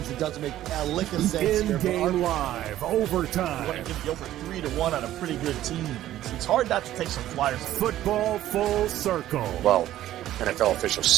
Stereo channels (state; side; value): quieter; left; 13.3 dB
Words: that doesn't make a lick of sense. In-game live, overtime. You want to give the over 3-1 on a pretty good team. It's hard not to take some flyers. Football full circle. Well, NFL officials